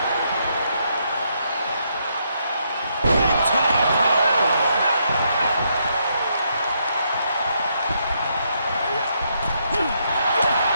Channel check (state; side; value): inverted; both; correlation -0.76